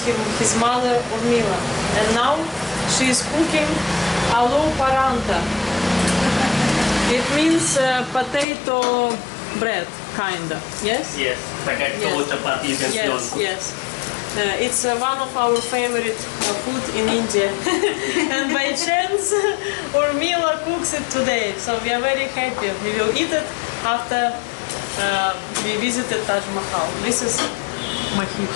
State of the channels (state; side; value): drops out; right; at 8.5 s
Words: his mother, Urmila. And now she is cooking aloo paranta. It means potato bread, kinda. Yes? Yes, potato, chapati, Yes, yes. It's one of our favorite food in India. And by chance, Urmila cooks it today. So we are very happy. We will eat it after we visited Taj Mahal. This is Mahit.